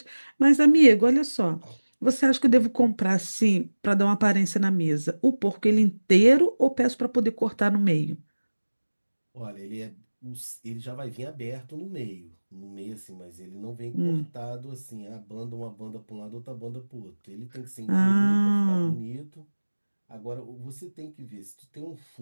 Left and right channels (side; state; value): both; inverted; correlation -1.00